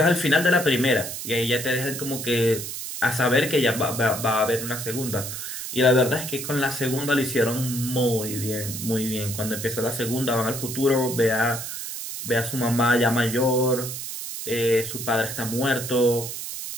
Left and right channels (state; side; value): noise; right; hiss, 7 dB below the sound